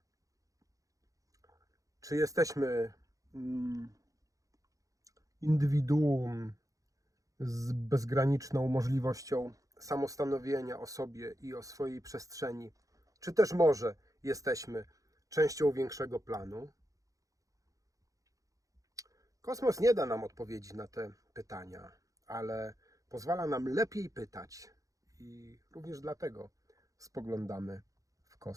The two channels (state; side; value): late; left; 0.16 ms